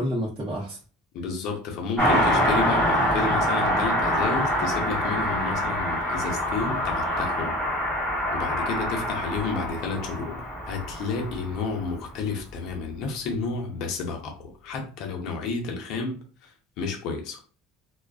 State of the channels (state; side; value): normal; both; correlation 0.38